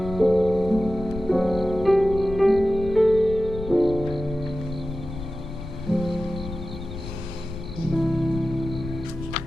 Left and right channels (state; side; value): noise; left; rumble, 9 dB below the sound